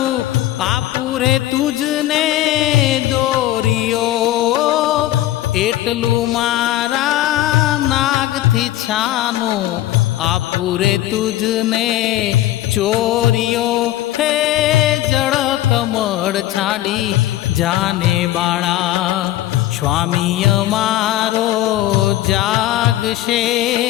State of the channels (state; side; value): quieter; right; 14.4 dB